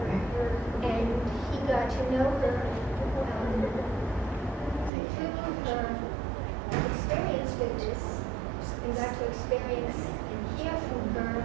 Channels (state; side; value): drops out; left; at 4.9 s